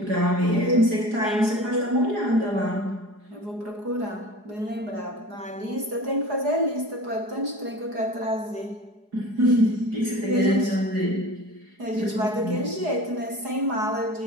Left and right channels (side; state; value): left; late; 4.8 ms